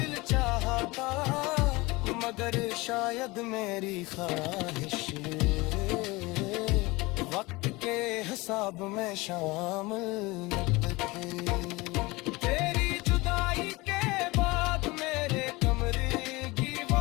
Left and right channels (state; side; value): quieter; right; 22.8 dB